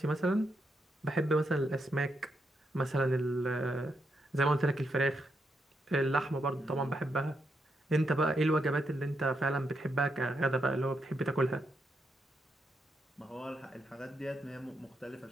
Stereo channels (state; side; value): normal; both; correlation 0.81